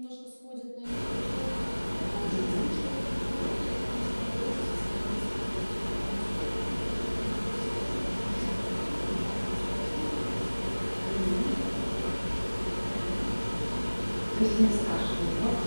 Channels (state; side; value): inverted; both; correlation -1.00